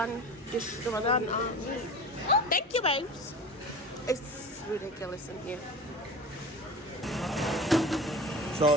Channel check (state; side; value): normal; both; correlation 0.34